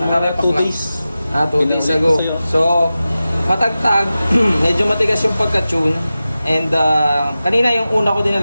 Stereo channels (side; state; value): both; inverted; correlation -0.94